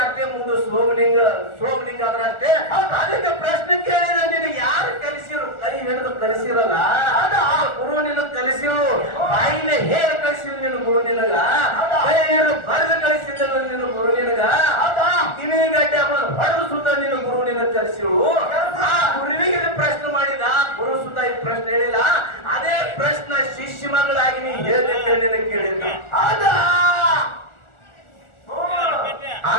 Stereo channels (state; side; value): late; right; 1.4 ms